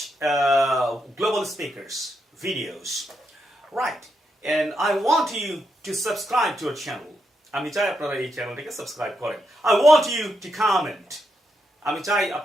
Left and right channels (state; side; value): normal; both; correlation 0.82